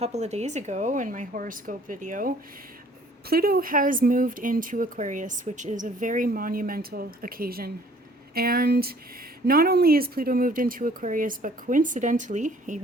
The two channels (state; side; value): normal; both; correlation 0.56